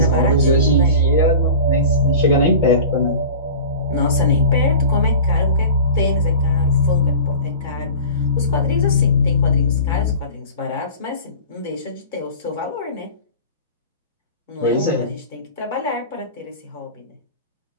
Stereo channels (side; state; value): both; inverted; correlation -0.37